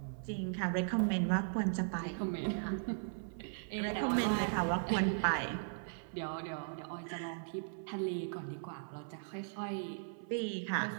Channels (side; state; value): left; silent; 53 dB below the other